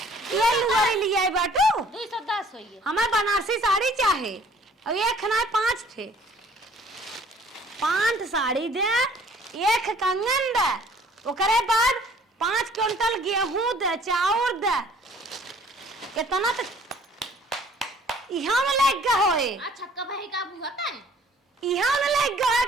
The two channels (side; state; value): both; normal; correlation 0.55